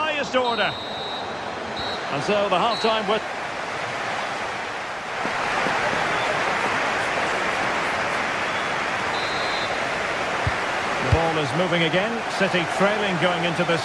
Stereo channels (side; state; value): both; identical; correlation 1.00